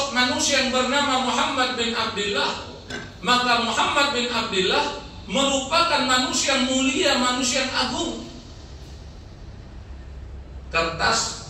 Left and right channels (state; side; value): identical; both; correlation 1.00